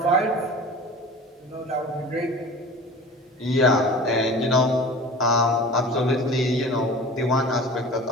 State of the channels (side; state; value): both; normal; correlation 0.39